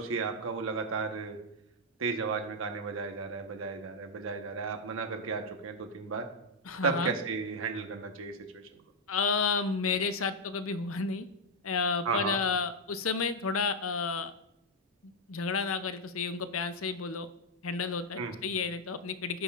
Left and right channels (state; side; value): normal; both; correlation -0.02